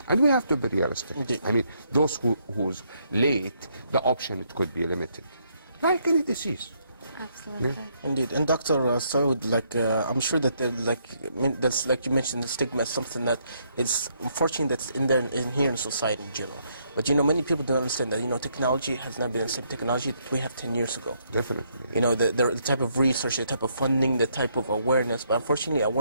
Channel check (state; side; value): inverted; both; correlation -0.73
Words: And we have to be realistic. Indeed. I mean, those who's late, the option, it could be limited, like any disease. Absolutely. Yeah. Indeed, and Dr. Saud, I'm sure that that's like you mentioned, the stigma is something that is unfortunate that's in here in society in general. But you know, many people don't understand that, you know, technology has not been the same technology that we have 10 years ago. Definitely. You know, the type of research, the type of funding, the type of awareness. But unfortunately,